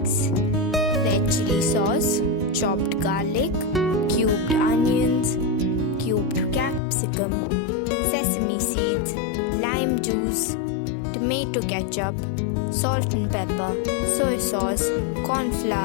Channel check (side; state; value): right; drops out; at 6.8 s